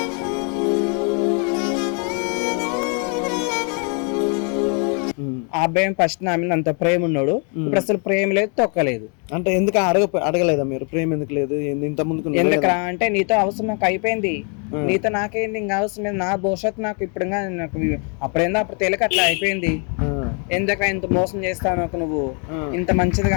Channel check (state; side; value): quieter; right; 38.5 dB